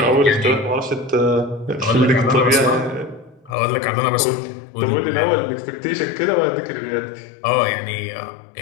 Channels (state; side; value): drops out; right; at 3.6 s